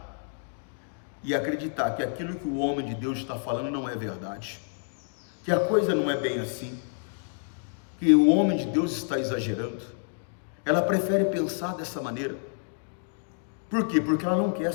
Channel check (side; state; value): right; silent; digital silence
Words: e acreditar que aquilo que o homem de Deus está falando não é verdade, que a coisa não é bem assim, que o homem de Deus está exagerando. Ela prefere pensar dessa maneira. Por quê? Porque ela não quer